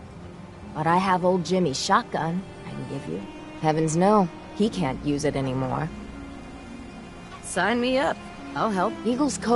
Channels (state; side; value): identical; both; correlation 1.00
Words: But I have old Jimmy's shotgun I can give you. Heavens no, he can't use it anymore. Sign me up. I'll help. Eagle's